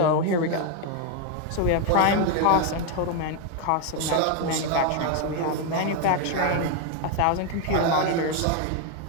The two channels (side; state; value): both; different; correlation 0.01